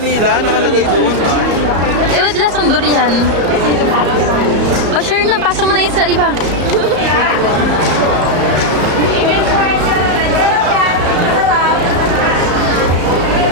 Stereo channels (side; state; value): left; late; 34 ms